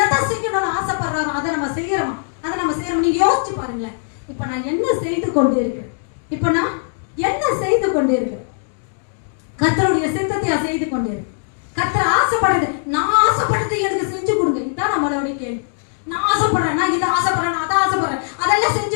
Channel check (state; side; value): silent; right; digital silence